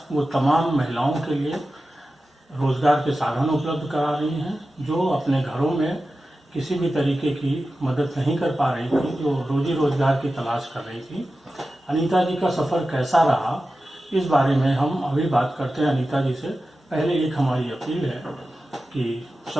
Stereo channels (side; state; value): both; normal; correlation 0.93